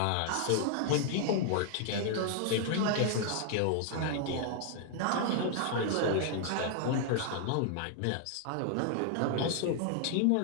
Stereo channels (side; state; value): both; different; correlation 0.00